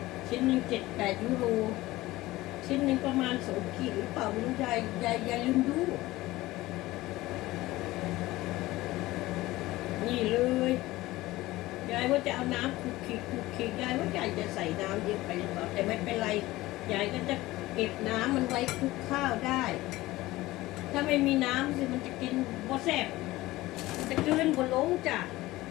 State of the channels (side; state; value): right; quieter; 18.1 dB